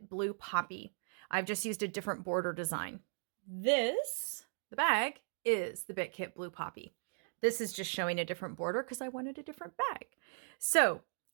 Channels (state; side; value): silent; left; digital silence